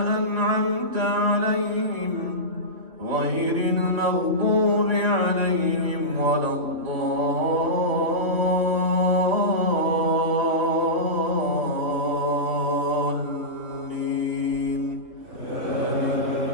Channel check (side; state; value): left; late; 2.9 ms